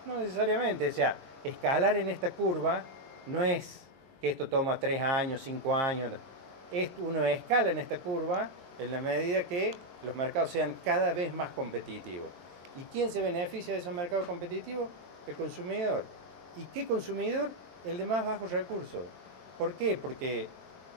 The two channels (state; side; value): late; left; 21 ms